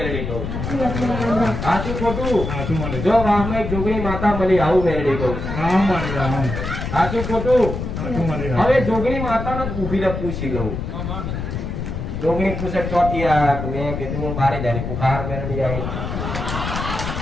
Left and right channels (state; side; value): noise; left; rumble, 5 dB below the sound